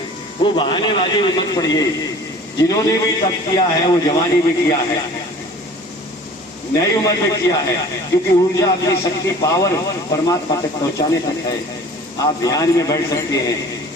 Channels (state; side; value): normal; both; correlation 0.46